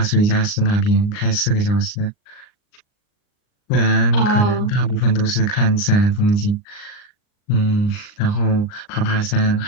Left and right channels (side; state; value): right; late; 39 ms